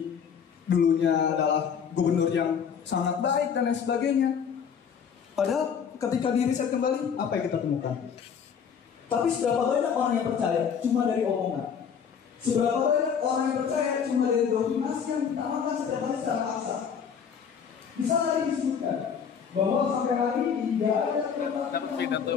dulunya adalah gubernur yang sangat baik dan lain sebagainya. Padahal ketika diriset kembali, apa yang kita temukan? Tapi seberapa banyak orang yang percaya cuma dari omongan? Seberapa banyak orang yang percaya cuma dari dominasi yang ditanamkan setiap hari secara paksa? Bisa tadi disebutkan bahwa sampai hari ini tidak ada dapat pidato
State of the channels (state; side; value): quieter; right; 7.2 dB